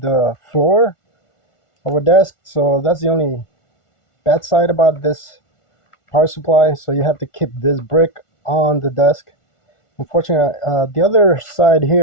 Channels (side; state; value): right; late; 1.4 ms